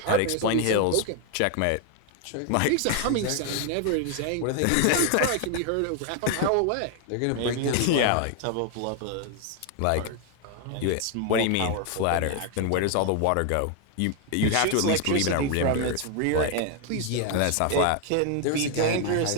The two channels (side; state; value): both; different; correlation 0.01